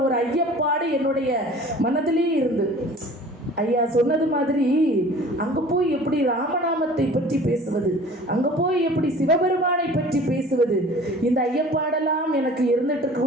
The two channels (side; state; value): both; normal; correlation 0.45